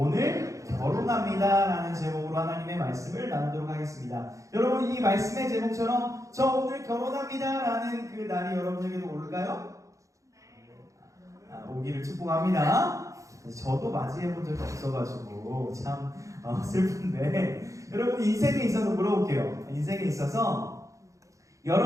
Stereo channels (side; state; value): left; late; 0.15 ms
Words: 결혼합니다 라는 제목으로 하나님의 말씀을 나누도록 하겠습니다. 여러분, 이 말씀의 제목처럼 저 오늘 결혼합니다 라는 그 날이 여러분에게도 올까요? 오기를 축복합니다. 저도 맞이해본 적이 없어가지고 참 슬픈데, 여러분 인생에 있어서 물어볼게요. 인생에 있어서